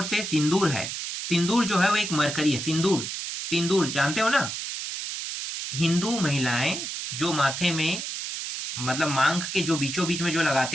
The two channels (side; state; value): right; noise; hiss, 5 dB below the sound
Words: से सिंदूर है। सिंदूर जो है वो एक मरकरी है। सिंदूर, सिंदूर जानते हो ना? हिंदू महिलाएं जो माथे में मतलब मांग के जो बीचों बीच में जो